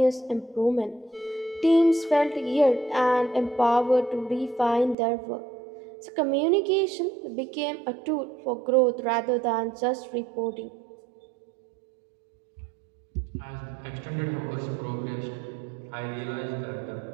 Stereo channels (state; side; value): drops out; left; at 5.0 s